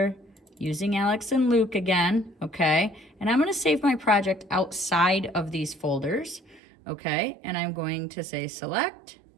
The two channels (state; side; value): drops out; left; at 6.6 s